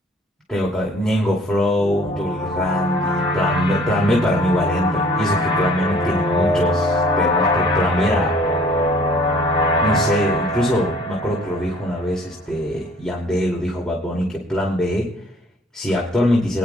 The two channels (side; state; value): both; normal; correlation 0.55